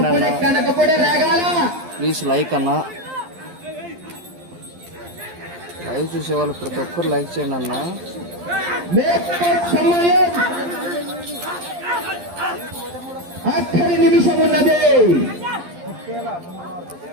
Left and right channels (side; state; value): left; late; 12 ms